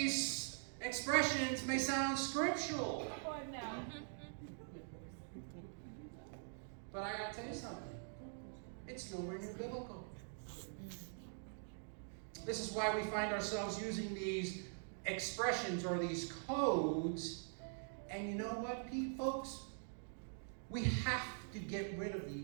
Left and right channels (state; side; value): silent; left; digital silence